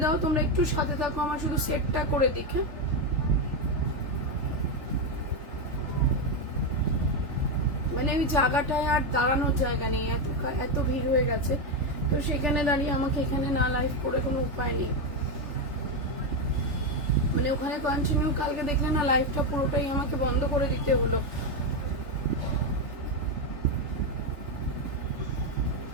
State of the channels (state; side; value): late; left; 3.4 ms